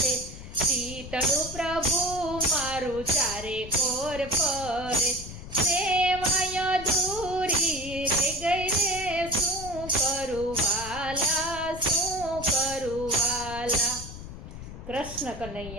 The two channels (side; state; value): left; noise; rumble, 12 dB below the sound